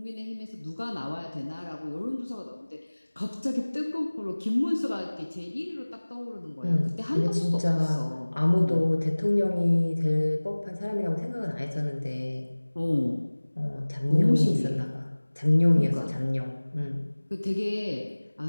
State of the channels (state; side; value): inverted; both; correlation -1.00